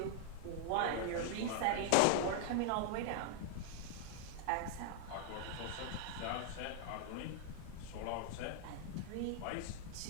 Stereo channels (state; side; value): different; both; correlation 0.00